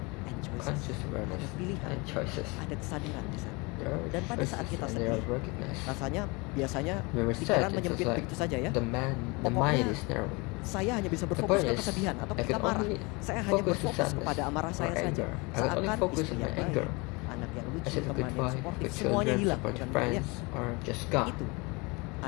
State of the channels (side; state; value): right; quieter; 27.1 dB